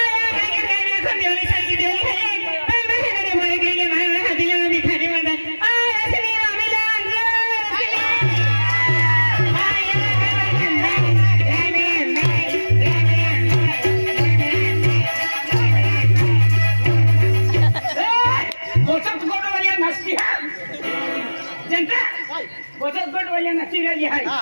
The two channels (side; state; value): both; inverted; correlation -1.00